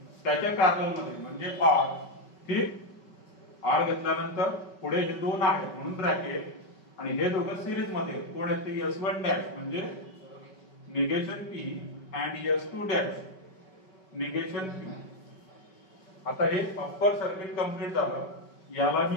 त्याच्या पॅरलल मध्ये म्हणजे R. ठीक, R घेतल्यानंतर पुढे हे दोन आहेत म्हणून ब्रॅकेट, आणि हे दोघं सिरीज मध्ये कोण आहेत ते S1 डॅश म्हणजे negation P and S2 dash negation Q. आता हे अप्पर सर्किट कंप्लीट झालं. याला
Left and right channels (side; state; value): right; late; 5.2 ms